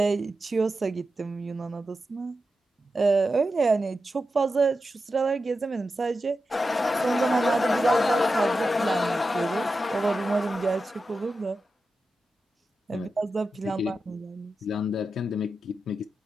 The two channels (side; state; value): both; normal; correlation 0.90